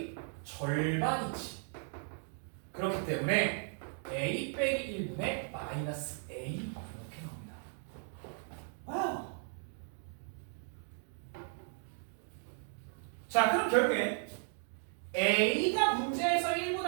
절반이지. 그렇기 때문에 A 빼기 1분의 마이너스 A 이렇게 나옵니다. 와우. 자, 그럼 결국에 A가 문제에서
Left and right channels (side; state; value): left; silent; 54 dB below the other